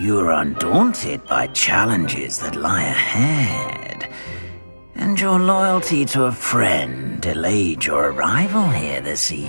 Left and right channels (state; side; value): inverted; both; correlation -1.00